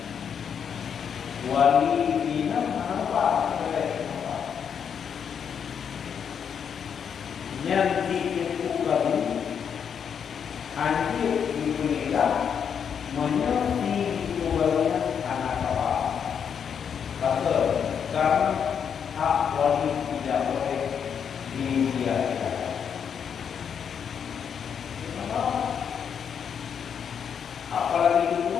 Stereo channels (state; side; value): quieter; right; 7.5 dB